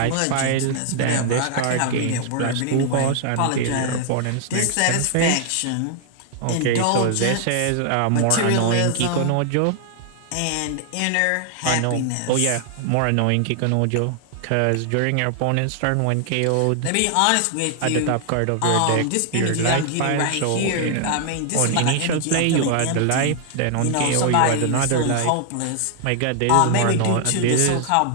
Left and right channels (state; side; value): different; both; correlation 0.00